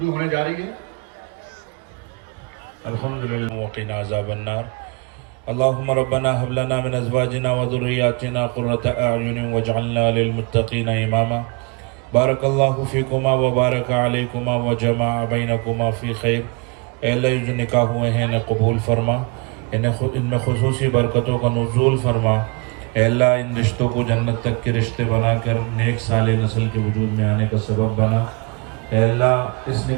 होने जा रही है। अल्हम्दुलिल्लाह वक़िना अज़ाबन्नार। अल्लाहुम्मा रब्बना हब लना मिन अज़वाजिना व ज़ुर्रिय्यातिना क़ुर्रता अ'युनिन वजअलना लिलमुत्तक़ीना इमामा। बारकल्लाहु फ़ीकुमा व बारक अलैकुमा व जमाअ बैनकुमा फ़ी खैर। ऐ अल्लाह, जो निकाह हुए हैं इन्हें कबूल फरमा, इनमें खुसूसी बरकतों का नुज़ूल फरमा। ऐ अल्लाह, इन रिश्तों को जन्नत तक के रिश्ते बनाकर नेक साले नस्ल के वजूद में आने का सबब बना। ऐ अल्लाह, इस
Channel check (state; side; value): quieter; left; 30.5 dB